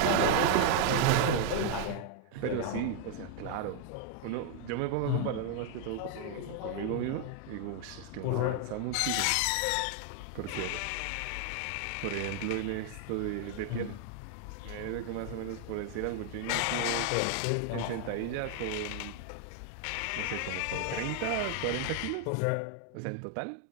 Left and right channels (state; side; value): different; both; correlation 0.00